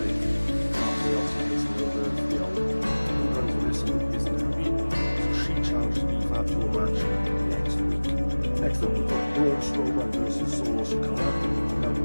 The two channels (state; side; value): inverted; both; correlation -1.00